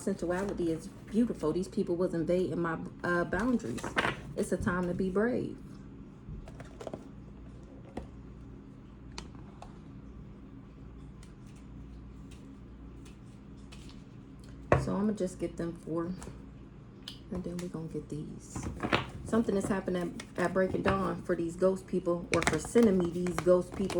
is beautiful. These people was invading my boundaries. It's a time to be brave. So I'm going to just get them 4. And then we're going to get these. Something is happening at breaking dawn for these ghost people. Or for sending me these ghost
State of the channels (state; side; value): identical; both; correlation 1.00